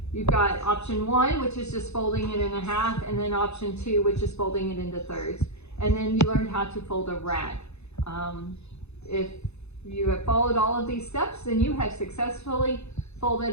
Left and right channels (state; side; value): late; right; 0.80 ms